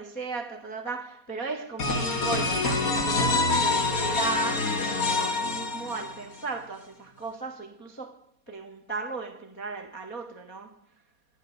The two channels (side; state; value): right; late; 4.2 ms